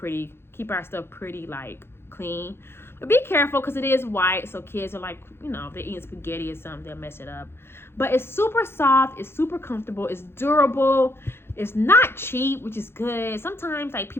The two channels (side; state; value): right; late; 0.11 ms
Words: keep our stuff pretty, like, clean. But be careful because it is white. So kids are like, you know, if they're eating spaghetti or something, they'll mess it up. But it's super soft. It's super comfortable. It's durable. It's not cheap, which is good. Sometimes, like,